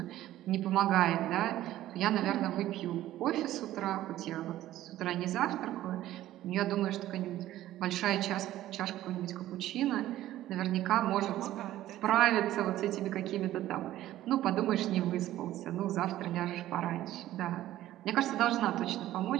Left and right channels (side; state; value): left; quieter; 14.1 dB